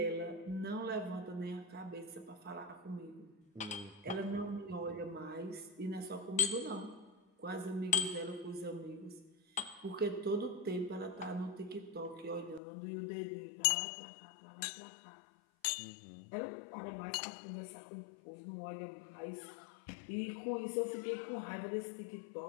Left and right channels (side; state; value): right; drops out; at 12.6 s